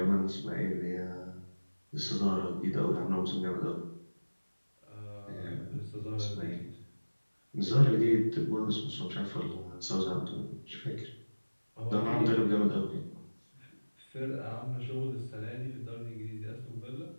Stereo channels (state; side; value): inverted; both; correlation -1.00